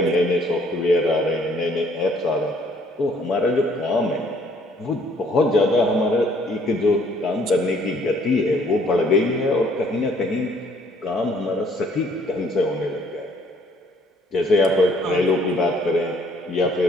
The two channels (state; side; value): normal; both; correlation 0.62